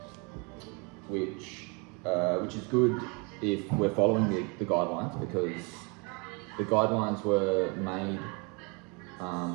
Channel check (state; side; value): quieter; left; 31.7 dB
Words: which is good if we're following the guidelines, because the guidelines were made